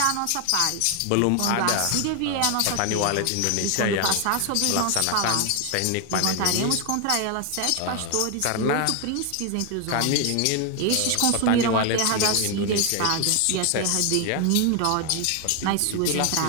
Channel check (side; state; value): both; different; correlation 0.01